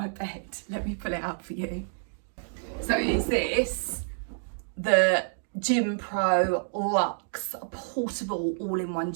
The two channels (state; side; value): silent; left; digital silence